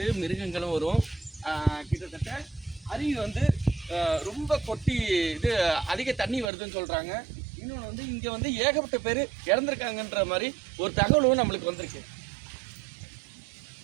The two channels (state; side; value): drops out; left; at 6.5 s